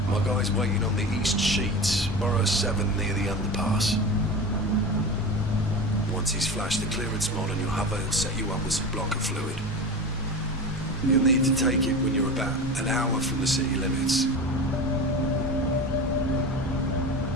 My guy's waiting on the east sheets, Borough 7 near the underpass. Once he's flashed the clearance mod on your hover, he'll set you up with some blocker fluid. You'll need to take it when you're about an hour from the city limits.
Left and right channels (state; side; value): normal; both; correlation 0.29